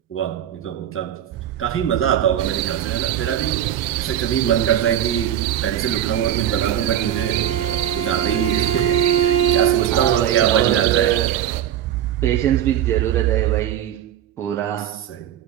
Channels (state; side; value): quieter; left; 10.8 dB